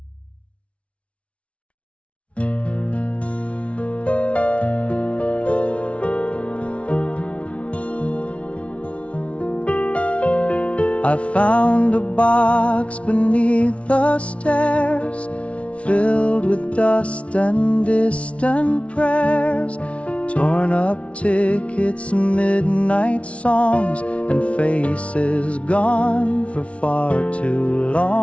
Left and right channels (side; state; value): right; late; 0.062 ms